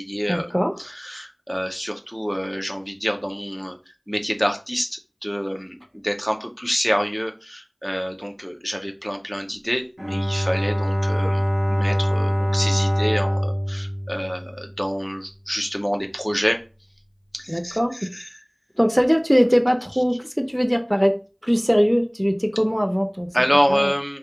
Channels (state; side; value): identical; both; correlation 1.00